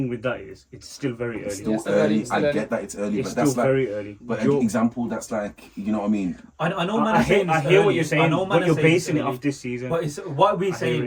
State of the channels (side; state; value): both; identical; correlation 1.00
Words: with that is it's still very early. It's still early. I get that it's early, but that's still very early. But an example, that's like, you know what I mean? I know, man. I hear what you're saying, but you're basing it off this season. But it's what we're